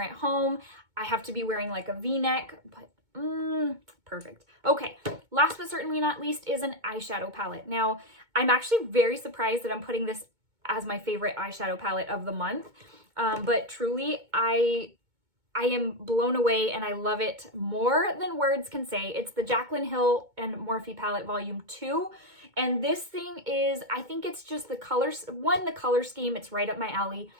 at home. I have to be wearing like a V-neck, but perfect. Okay, last but certainly not least is an eyeshadow palette. Now, I'm actually very surprised that I'm putting this as my favorite eyeshadow palette of the month. But truly, I am blown away and I love it more than words can say. It's the Jaclyn Hill and Morphe palette volume 2. And this thing is, I think it's just the colors. 1, the color scheme, it's right up my alley.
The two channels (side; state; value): left; late; 2.2 ms